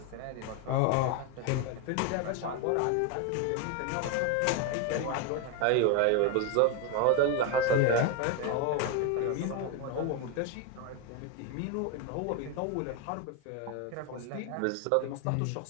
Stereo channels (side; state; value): both; different; correlation 0.02